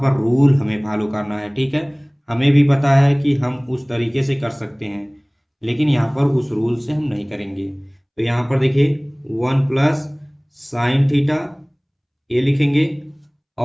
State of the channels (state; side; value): identical; both; correlation 1.00